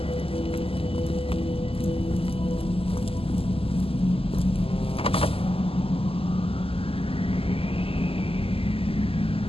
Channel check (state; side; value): late; right; 0.27 ms